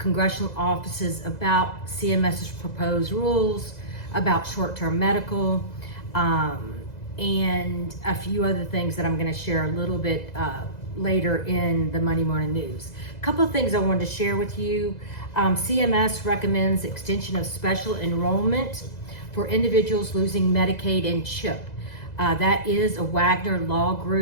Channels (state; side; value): late; right; 2.0 ms